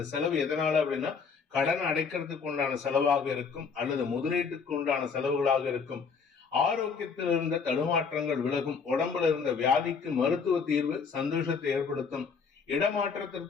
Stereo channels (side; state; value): right; quieter; 5.6 dB